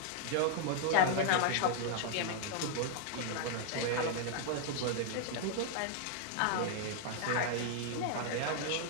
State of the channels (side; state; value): both; different; correlation -0.01